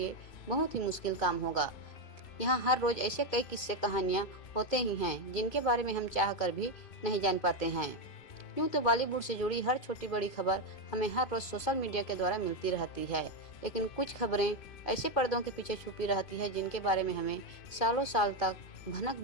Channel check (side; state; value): right; late; 2.2 ms